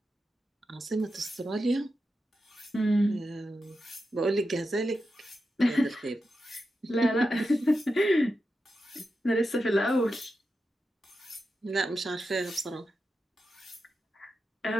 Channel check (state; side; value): normal; both; correlation 0.89